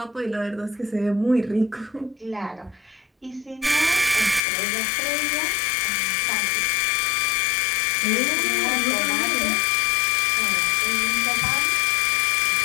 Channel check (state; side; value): drops out; right; at 4.4 s